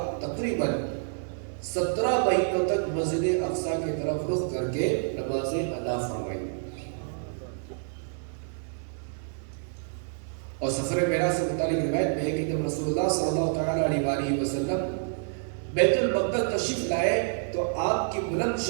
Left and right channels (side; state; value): left; silent; 59 dB below the other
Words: تقریباً 17 مہینوں تک مسجد اقصی کی طرف رخ کر کے نمازیں ادا فرمائی، اور سفر معراج سے متعلق روایت میں ہے کہ جب رسول اللہ صلی اللہ تعالی علیہ وسلم بیت المقدس تشریف لائے تو آپ کی بلند